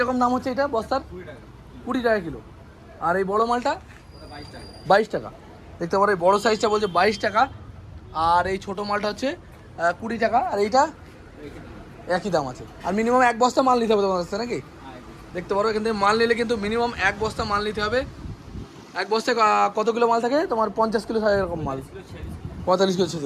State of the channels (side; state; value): both; identical; correlation 1.00